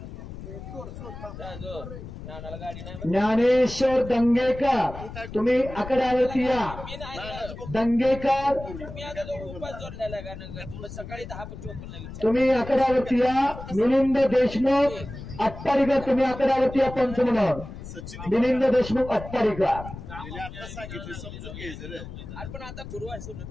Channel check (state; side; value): noise; left; rumble, 12 dB below the sound